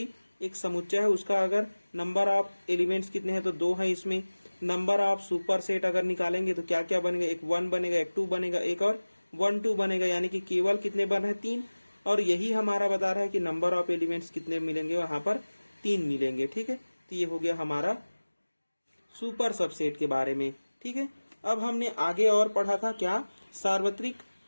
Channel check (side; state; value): both; inverted; correlation -1.00